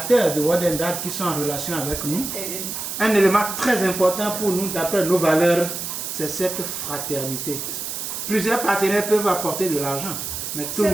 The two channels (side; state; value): right; noise; hiss, 5 dB below the sound